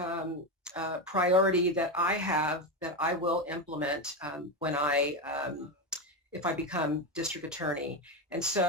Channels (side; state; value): both; normal; correlation 0.14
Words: priority that I have, that I will implement when if I become district attorney. And